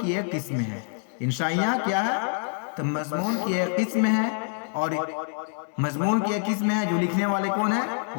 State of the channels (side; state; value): right; silent; 58 dB below the other